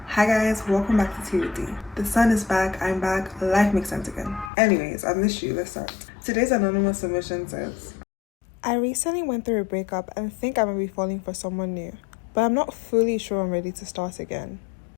Hi guys, welcome back to Tea with D. The sun is back, I'm back, life makes sense again. Anyways, I missed you, let's start. Today's anonymous submission says, I recently went through a breakup and think I might be falling for someone new, but I'm not fully sure I'm ready to start again.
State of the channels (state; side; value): drops out; right; at 4.5 s